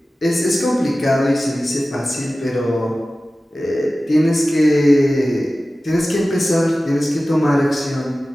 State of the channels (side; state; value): both; normal; correlation 0.96